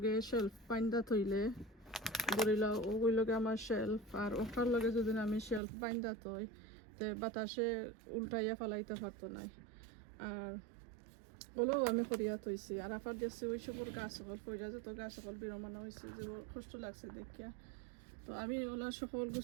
শেলফ বাইন্দা থইলে ধরিলা ওই লগে আমার শেলফ আর ওটার লগে যদি আমি শেলফ বাইন্দা থই তে বাতাসে উল্টাইয়া ফালাইতে পারতো নাই আর ওলাও আমি করিয়া থইছি আর আফার দেখছি ওই সবর গাছ সকল পয়সা যত গাছ সকল বিরমানো হয়েছে যে কষ্ট লাগছে দেখিয়া তো আমি ওলা সকল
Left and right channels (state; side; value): drops out; left; at 5.6 s